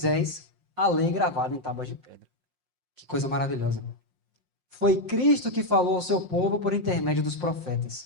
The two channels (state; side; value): late; left; 5.6 ms